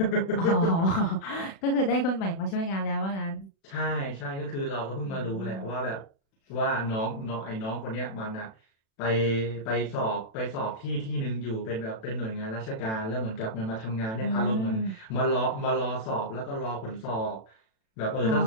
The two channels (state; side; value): late; right; 36 ms